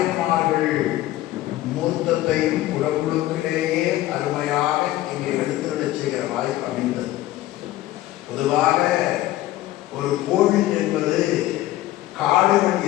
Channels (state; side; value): quieter; right; 15.4 dB